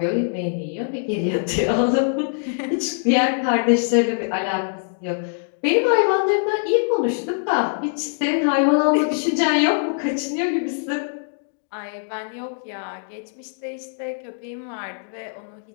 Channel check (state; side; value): silent; right; digital silence